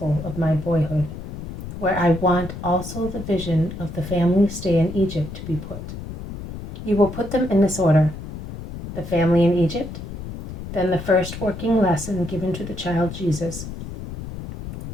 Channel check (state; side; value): noise; left; rumble, 10 dB below the sound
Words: of my boyhood, where I want also the vision of the family stay in Egypt to be put. You will put them in this order: the family in Egypt, then the first working lesson given to the child Jesus,